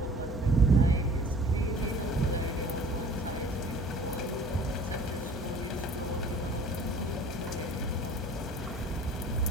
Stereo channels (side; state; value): both; normal; correlation 0.49